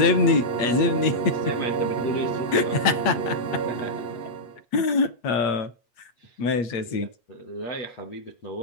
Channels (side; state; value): right; late; 8.3 ms